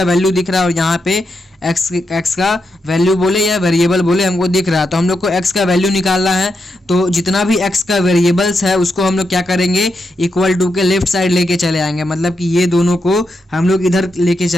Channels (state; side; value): normal; both; correlation 0.84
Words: वैल्यू दिख रहा है और यहाँ पे एक्स का वैल्यू बोले या वेरिएबल बोले हमको दिख रहा है। तो हम लोग को एक्स का वैल्यू निकालना है, तो जितना भी एक्स का वेरिएबल्स है उसको हम लोग क्या करेंगे, इक्वल टू के लेफ्ट साइड लेके चले आएंगे। मतलब कि ये दोनों को हम लोग इधर लेके